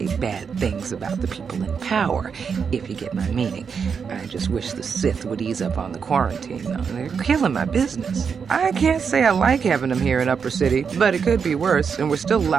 bad things about the people in power, if you get my meaning. I just wish the Sith would ease up on the quarantine, though. They're killing my business. I can't say I like having them here in Upper City, but it could be worse, and we're still a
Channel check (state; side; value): quieter; left; 6.3 dB